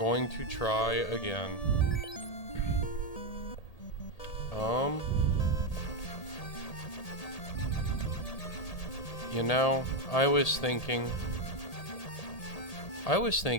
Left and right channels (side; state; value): right; late; 1.8 ms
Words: to try again. You know, I was thinking